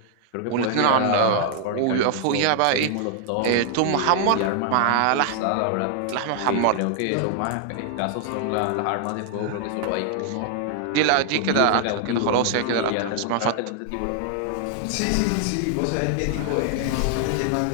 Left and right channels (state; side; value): different; both; correlation 0.00